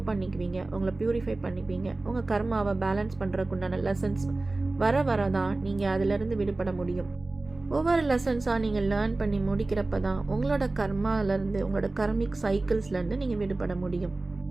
பண்ணிக்குவீங்க, உங்களை ப்யூரிஃபை பண்ணிக்குவீங்க. உங்கள் கர்மாவை பேலன்ஸ் பண்ணுறதுக்குண்டான லெசன்ஸ் வர தான் நீங்கள் அதிலிருந்து விடுபட முடியும். ஒவ்வொரு லெசன்ஸாக நீங்கள் லேர்ன் பண்ணி முடிக்கிறப்ப தான் உங்களோட கர்மாவிலேருந்து, உங்களோட கர்மிக் சைக்கிள்ஸ்லேருந்து நீங்கள் விடுபட முடியும்.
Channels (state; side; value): quieter; left; 3.1 dB